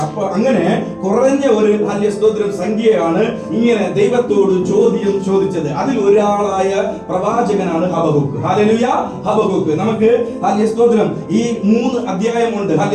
അപ്പൊ അങ്ങനെ കുറഞ്ഞ ഒരു ഹല്ലേലൂയ സ്തോത്രം സംഖ്യയാണ് ഇങ്ങനെ ദൈവത്തോട് ചോദ്യം ചോദിച്ചത്. അതിൽ ഒരാളായ പ്രവാചകനാണ് ഹബക്കൂക്ക്. ഹല്ലേലൂയ. ഹബക്കൂക്ക്. നമുക്ക് ഹല്ലേലൂയ സ്തോത്രം ഈ 3 അധ്യായമുണ്ട്.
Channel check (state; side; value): identical; both; correlation 1.00